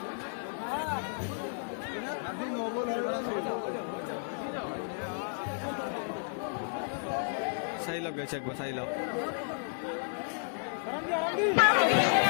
চাই লওক গাইছে একবার চাই লওক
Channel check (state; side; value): silent; right; digital silence